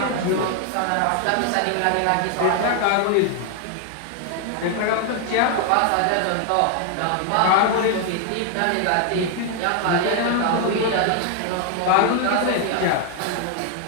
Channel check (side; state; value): both; different; correlation 0.00